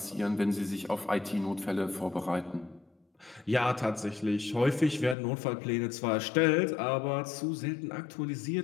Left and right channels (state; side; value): drops out; right; at 5.2 s